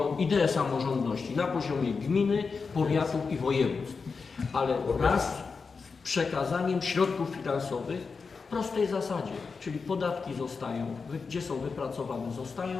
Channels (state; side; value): quieter; right; 4.9 dB